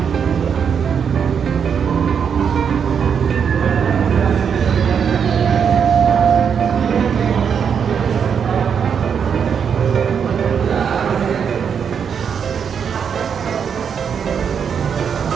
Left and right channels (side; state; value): left; quieter; 7.2 dB